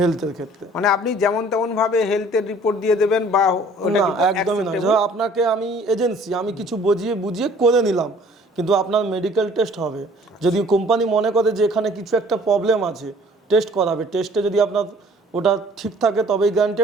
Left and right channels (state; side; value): normal; both; correlation 0.54